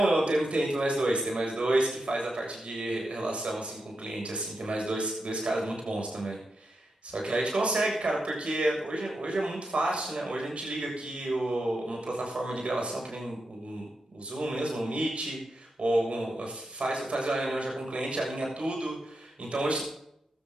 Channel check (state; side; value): normal; both; correlation 0.86